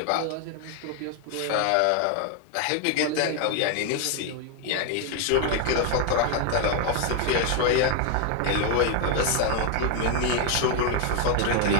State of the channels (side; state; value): both; different; correlation 0.01